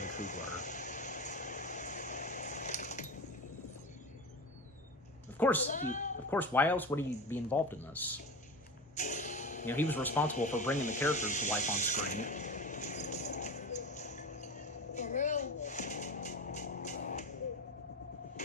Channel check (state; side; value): normal; both; correlation 0.26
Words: Coogler. Of course, why else would he be involved in this? You know, he was responsible for bringing the characters to life on screen. For real?